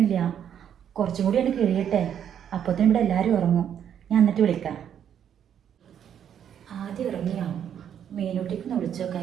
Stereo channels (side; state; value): left; quieter; 9.1 dB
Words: കുറച്ചും കൂടി എനിക്ക് കഴിയട്ടെ. അപ്പത്തേനും ഇവിടെ എല്ലാവരും ഉറങ്ങും. ഞാൻ എന്നിട്ട് വിളിക്കാം. ആദ്യം ഇറങ്ങിയോ? മീനൂട്ടിക്കൊന്ന്